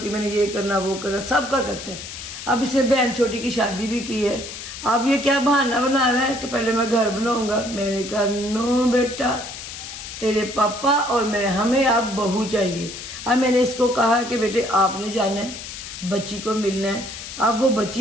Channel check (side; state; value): left; noise; hiss, 10 dB below the sound